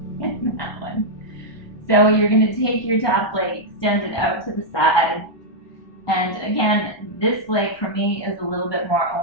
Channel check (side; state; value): right; late; 1.2 ms